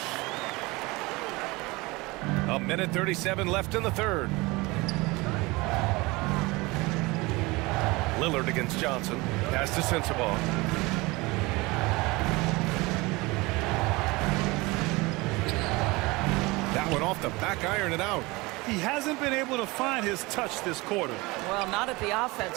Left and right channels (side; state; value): left; quieter; 23.2 dB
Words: A minute 37 left in the third. Lillard against Johnson. Pass to Sensabaugh. That one off the back iron and out. He hasn't been able to find his touch this quarter. Well, not at the